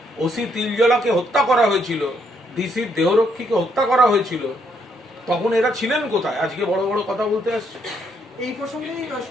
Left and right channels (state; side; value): normal; both; correlation 0.73